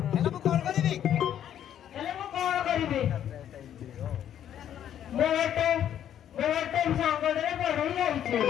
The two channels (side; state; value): right; quieter; 10.3 dB